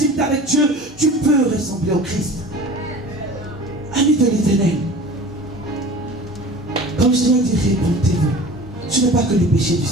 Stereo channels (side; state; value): both; normal; correlation 0.40